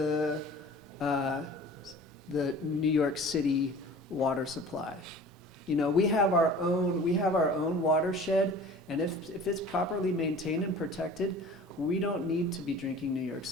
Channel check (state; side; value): normal; both; correlation 0.43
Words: New York City water supply. We have our own watershed, and if it's properly maintained and protected, we don't need to be drinking New York